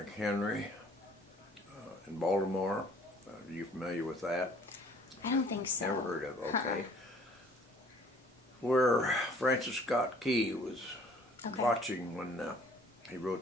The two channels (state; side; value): normal; both; correlation 0.55